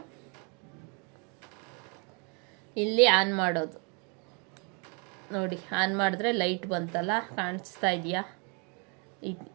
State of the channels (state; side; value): quieter; left; 35.1 dB